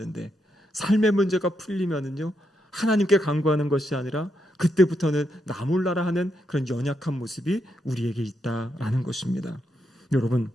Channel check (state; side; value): normal; both; correlation 0.81